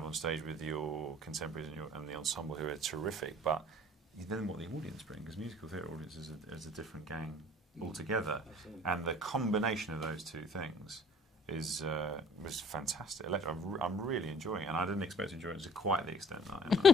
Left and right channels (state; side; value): normal; both; correlation 0.53